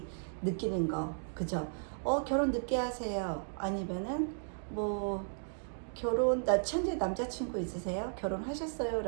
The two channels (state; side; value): silent; left; digital silence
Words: 느끼는 거, 그죠? 결혼 늦게 하세요. 아니면은, 뭐, 현재 남자친구 있으세요? 결혼하셨어요?